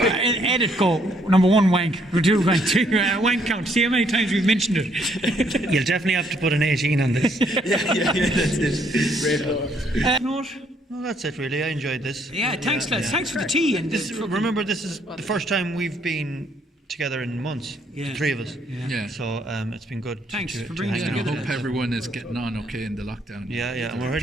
go, number 1 wank, 2 wank, 3 wank count. See how many times we've mentioned it. You'll definitely have to put an 18 on this. Yeah, that's it. Great. No, that's it really. I enjoyed this. Yeah, thanks lads. Thanks for the tea. And remember, this is the first time we've been together in months, Yeah. the three of us. Yeah. So it's been good. Thanks for to bringing hang us I out. together. hope everyone is getting on okay in the lockdown. Yeah, and we're They're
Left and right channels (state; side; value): normal; both; correlation 0.69